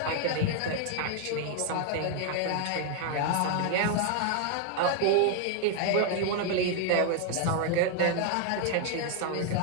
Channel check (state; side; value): different; both; correlation 0.00